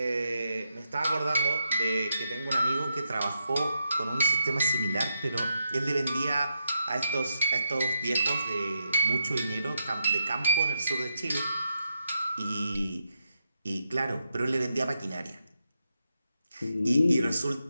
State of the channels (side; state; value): both; inverted; correlation -0.82